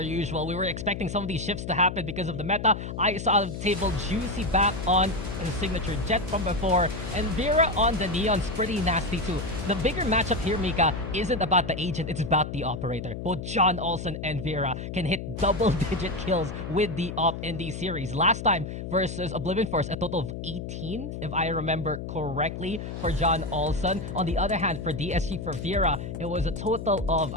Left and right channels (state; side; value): noise; left; hum, 7 dB below the sound